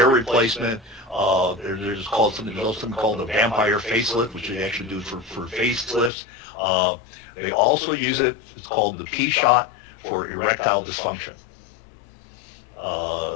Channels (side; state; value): right; drops out; at 6.1 s